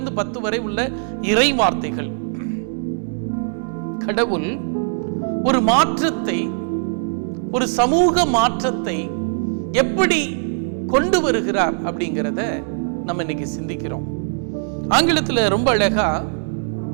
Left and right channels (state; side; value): silent; left; digital silence